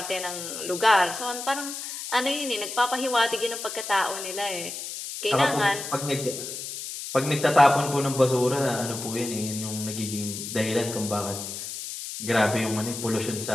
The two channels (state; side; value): noise; left; hiss, 7 dB below the sound